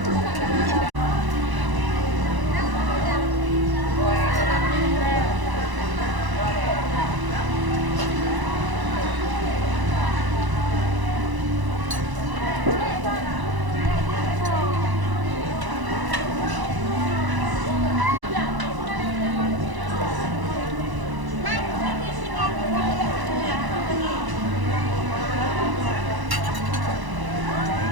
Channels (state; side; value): late; left; 1.0 ms